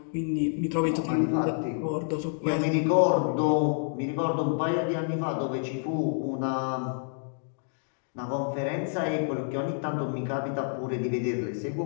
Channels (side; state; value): right; silent; digital silence